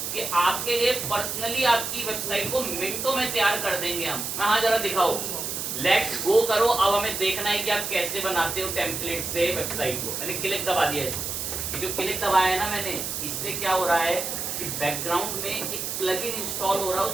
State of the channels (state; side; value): noise; right; hiss, 4 dB below the sound